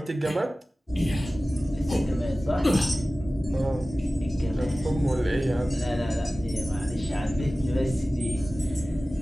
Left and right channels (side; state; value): both; normal; correlation 0.97